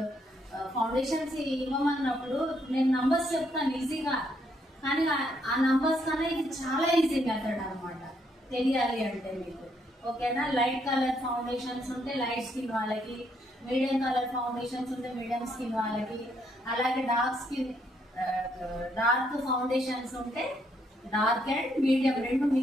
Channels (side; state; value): both; normal; correlation 0.73